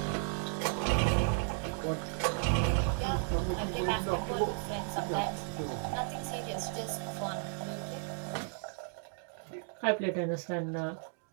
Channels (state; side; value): silent; left; 55 dB below the other